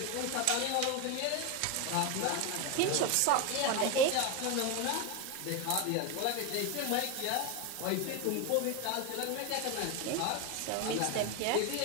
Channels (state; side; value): different; both; correlation 0.02